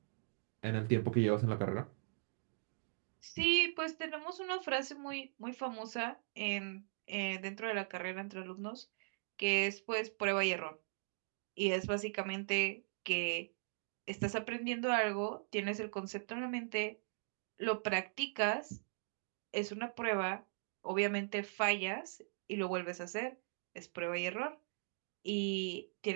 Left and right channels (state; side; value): silent; left; digital silence